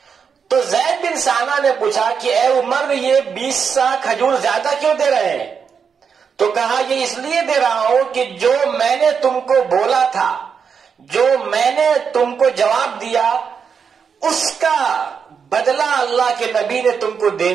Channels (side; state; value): left; quieter; 6.4 dB